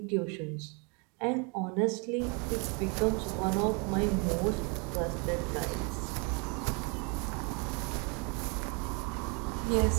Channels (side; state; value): left; quieter; 33.0 dB